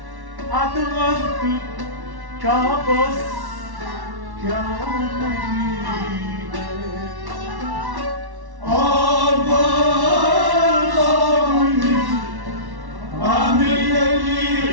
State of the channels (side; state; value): left; late; 1.1 ms